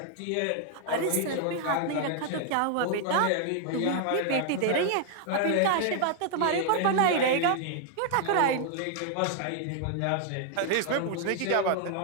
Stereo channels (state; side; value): different; both; correlation 0.00